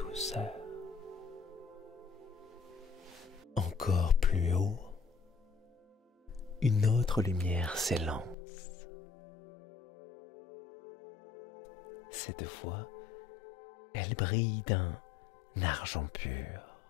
Encore plus haut, une autre lumière s'élance. Cette fois, elle brille d'un argent pur.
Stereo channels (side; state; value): right; drops out; at 8.3 s